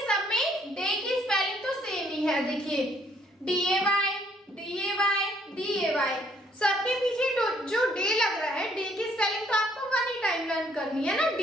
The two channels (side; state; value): both; normal; correlation 0.66